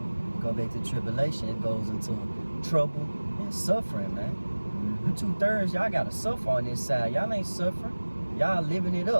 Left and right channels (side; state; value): both; inverted; correlation -1.00